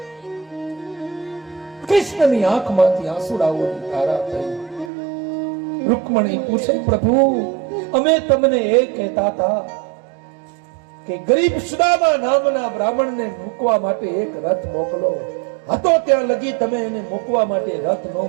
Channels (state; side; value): drops out; left; at 4.9 s